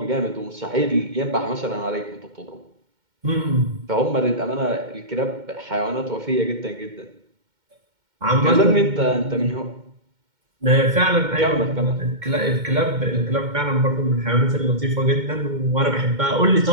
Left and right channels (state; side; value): late; left; 2.1 ms